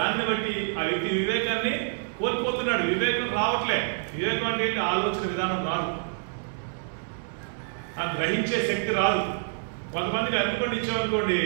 బట్టి ఆ వ్యక్తి వివేకాన్ని కోల్పోతున్నాడు. వివేకం రావట్లే. వివేకం అంటే ఏంటి? ఆలోచన విధానం రాదు, ఆ గ్రహించే శక్తి రాదు. కొంతమందికి అనుకోండి ఇచ్చామనుకోండి,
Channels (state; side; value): silent; left; 60 dB below the other